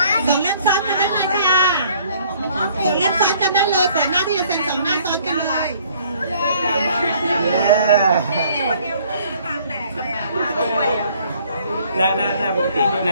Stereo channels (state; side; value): inverted; both; correlation -0.59